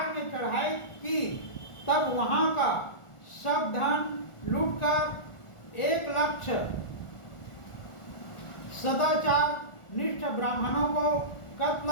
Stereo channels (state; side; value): late; right; 1.4 ms